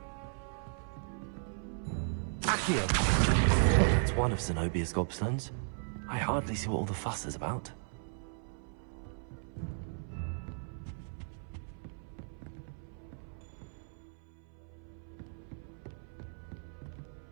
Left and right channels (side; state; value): left; silent; 54 dB below the other